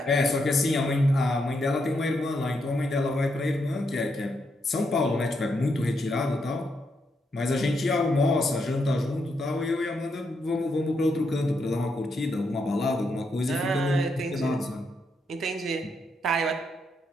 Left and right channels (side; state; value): both; normal; correlation 0.80